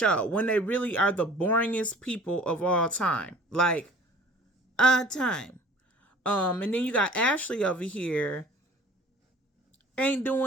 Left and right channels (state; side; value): normal; both; correlation 0.48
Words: when they really are the boringest people of all time. Like, time. And then you got Ashley over here, ain't